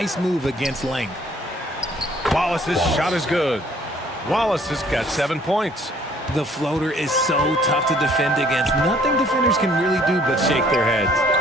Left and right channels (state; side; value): normal; both; correlation 0.59